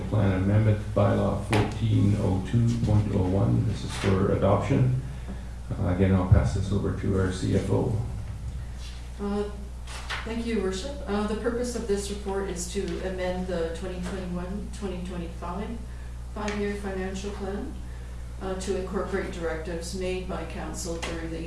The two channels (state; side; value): identical; both; correlation 1.00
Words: plan amendment bylaw 1402.01. This is for adoption. Again, I'll pass this over to our CFO. Thank you, Your Worship. The purpose of this report is to amend the 2021-2025 5-year financial plan to incorporate directives made by council during the